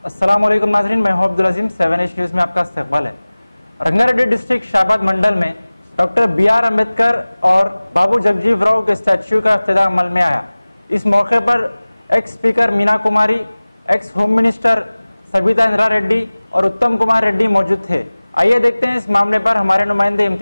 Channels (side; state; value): both; inverted; correlation -1.00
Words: अस्सलामुअलैकुम नाज़रीन, मैं हूं अब्दुल अजीम। 7H न्यूज़ में आपका इस्तकबाल है। रंगारेड्डी डिस्ट्रिक्ट शाहबाद मंडल में डॉक्टर BR अम्बेडकर और बाबू जगजीवन राव के स्टैच्यू का इफ्तिताह अमल में आया। इस मौके पर ex speaker Meena Kumari, ex home minister Sabita Indra Reddy और उत्तम कुमार रेड्डी मौजूद थे। आइए देखते हैं इस मामले पर हमारे नुमाइंदे